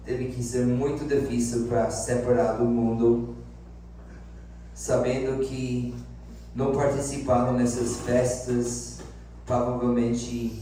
teve que ser muito difícil para separar do mundo, sabendo que não participaram nessas festas,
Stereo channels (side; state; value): both; identical; correlation 1.00